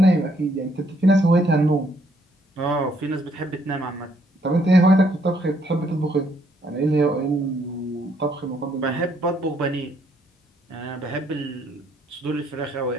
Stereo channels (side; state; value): both; normal; correlation 0.70